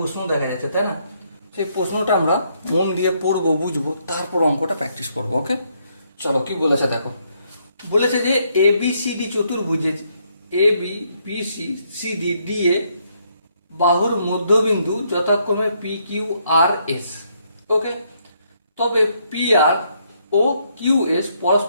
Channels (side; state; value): both; inverted; correlation -0.73